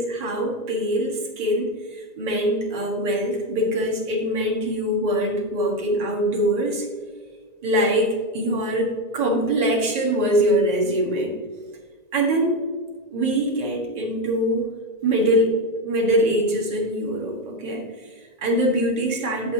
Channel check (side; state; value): left; late; 1.9 ms